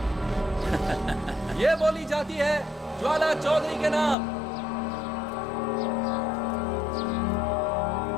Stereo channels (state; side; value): drops out; right; at 4.2 s